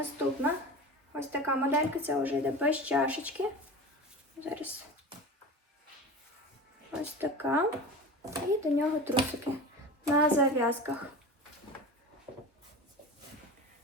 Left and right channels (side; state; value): both; normal; correlation 0.31